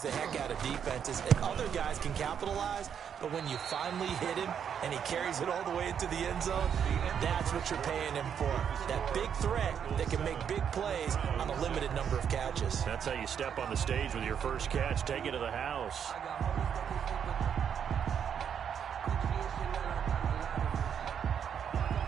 the heck out of defenses, and other guys can capitalize, but when you finally hit him and he carries it all the way into the end zone, that's what you're paying him for. That big threat that can make big plays on a limited number of catches. That's how you step on the stage with your first catch, take it to the house.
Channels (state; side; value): quieter; left; 8.0 dB